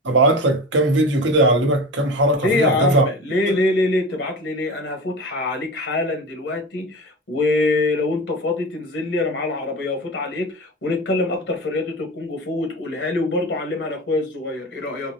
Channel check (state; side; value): normal; both; correlation 0.31